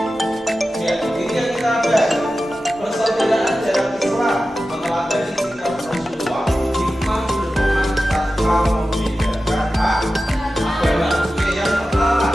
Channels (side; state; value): both; normal; correlation 0.94